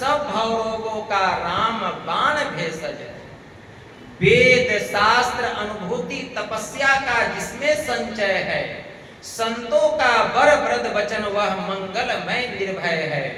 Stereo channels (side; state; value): both; identical; correlation 1.00